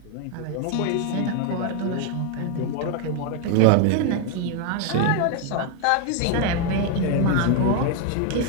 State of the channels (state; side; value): different; both; correlation 0.01